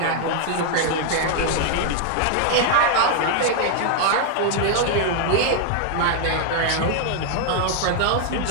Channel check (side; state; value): both; different; correlation 0.00